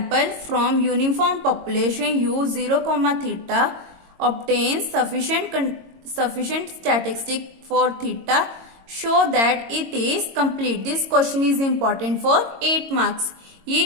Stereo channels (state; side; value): late; left; 22 ms